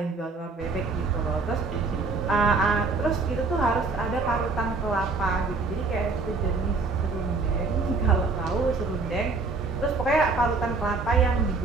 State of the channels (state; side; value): quieter; left; 4.0 dB